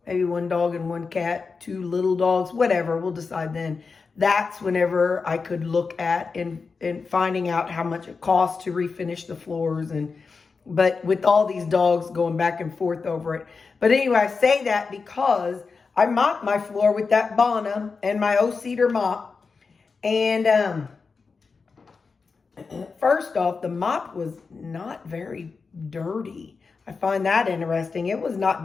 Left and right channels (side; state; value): right; quieter; 4.8 dB